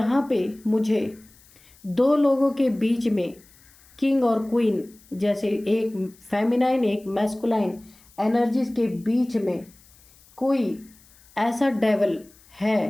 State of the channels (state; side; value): noise; left; hiss, 27 dB below the sound